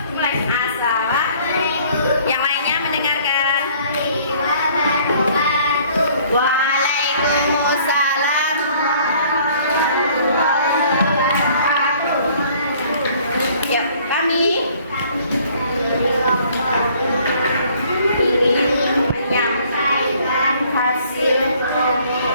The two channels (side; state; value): both; inverted; correlation -0.57